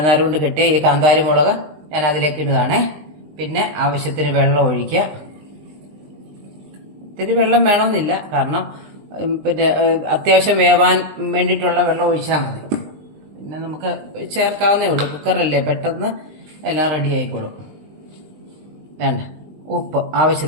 കൊണ്ട് കെട്ടിയ ഈ കാന്താരി മുളക് ഞാൻ അതിലേക്ക് ഇടുകയാണേ. പിന്നെ ആവശ്യത്തിന് വെള്ളം ഒഴിക്കുക. ഇത്തിരി വെള്ളം വേണമെന്നില്ല, കാരണം പിന്നെ അത്യാവശ്യം വേവാൻ വേണ്ടിയിട്ടുള്ള വെള്ളം ഒഴിച്ചാൽ മതി. പിന്നെ നമുക്ക് ചേർക്കാവുന്നേ ഉള്ളൂ, കുക്കറല്ലേ, പെട്ടെന്ന് എല്ലാം റെഡി ആയിക്കോളും. വേണ്ട ഉപ്പ്,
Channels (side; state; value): left; late; 20 ms